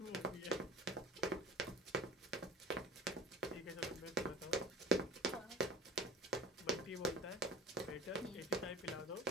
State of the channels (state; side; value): normal; both; correlation 0.37